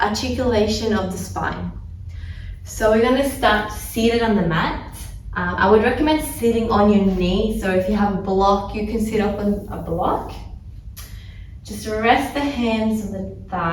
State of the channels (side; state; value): both; identical; correlation 1.00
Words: articulation of the spine. So we're going to start seated on the mat. I would recommend sitting on your knee, so if you have a block you can sit up on a block. Just rest the hands on the